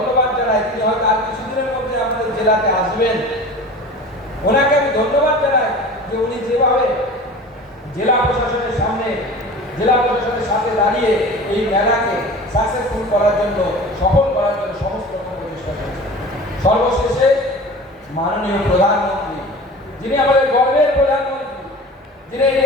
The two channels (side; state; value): both; normal; correlation 0.38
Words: জানাই। তিনি হয়তো আর কিছুদিনের মধ্যে আমাদের জেলাতে আসবেন, ওনাকে আমি ধন্যবাদ জানাই যে উনি যেভাবে জেলা প্রশাসনের সাথে দাঁড়িয়ে এই মেলাকে সাকসেসফুল করার জন্য, সফল করার জন্য সমস্ত রকম প্রচেষ্টা করেছেন। সর্বশেষে মাননীয় প্রধানমন্ত্রী, যিনি আমাদের গর্বের প্রধানমন্ত্রী, যিনি এই